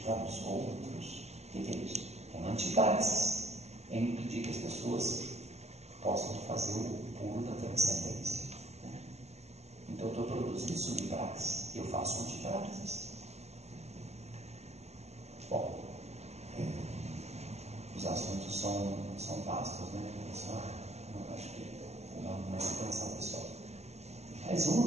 para os outros. O que é isso? É uma antipraxis. É impedir que as pessoas possam fazer o pulo da transcendência. Né? Então, eu estou produzindo subpraxis, eu faço antipraxis. Bom, os assuntos são vastos, né? Acho que não é intenção, pessoal. Mais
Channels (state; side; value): late; left; 0.31 ms